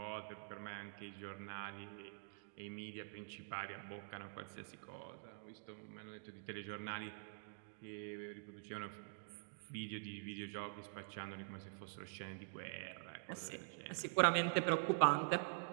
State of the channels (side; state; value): left; silent; digital silence